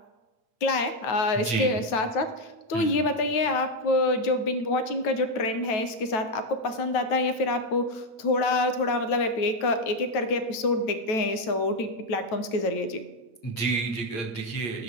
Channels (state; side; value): late; right; 9.2 ms